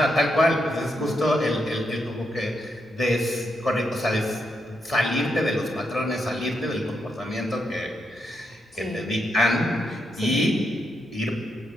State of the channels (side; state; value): both; normal; correlation 0.82